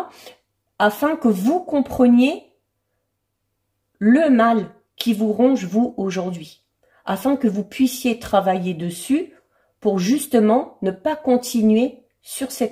afin que vous compreniez le mal qui vous ronge vous aujourd'hui, afin que vous puissiez travailler dessus pour justement ne pas continuer sur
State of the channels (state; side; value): identical; both; correlation 1.00